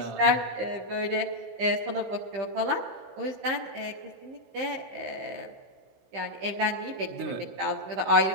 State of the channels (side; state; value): left; late; 15 ms